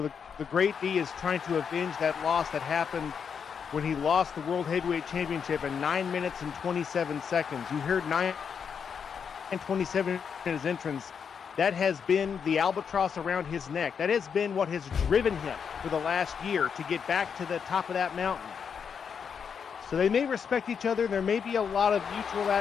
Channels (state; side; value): quieter; right; 6.8 dB